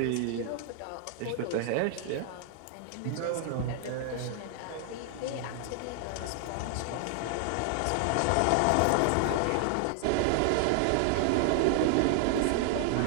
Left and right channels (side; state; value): both; different; correlation 0.00